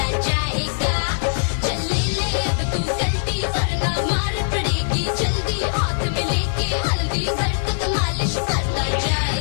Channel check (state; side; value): silent; right; digital silence